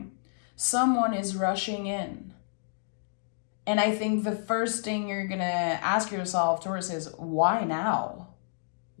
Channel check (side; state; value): right; silent; digital silence